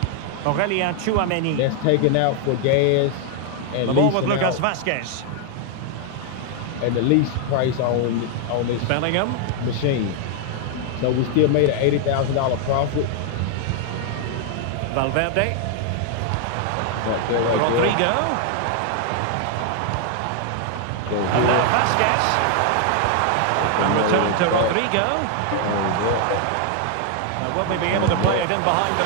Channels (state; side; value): different; both; correlation 0.00